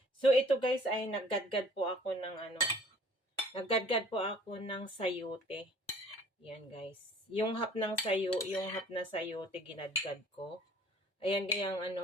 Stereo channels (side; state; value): both; normal; correlation 0.53